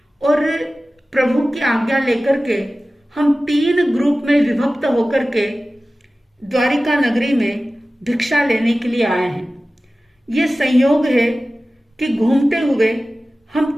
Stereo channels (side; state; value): both; normal; correlation 0.96